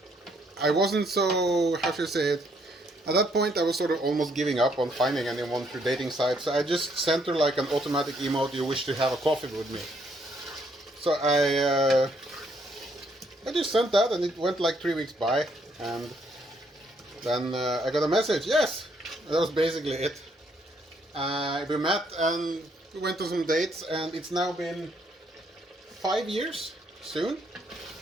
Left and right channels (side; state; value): both; normal; correlation 0.70